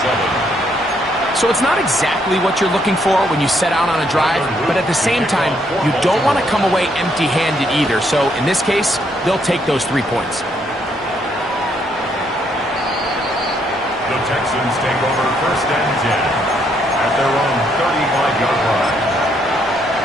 So it's not exactly what you're looking for when you set out on a drive, but at the same time, you don't want to come away empty-handed either. So in this case, they'll take those 3 points. The Texans take over 1st and 10 at their own 35-yard line.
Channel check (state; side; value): normal; both; correlation 0.72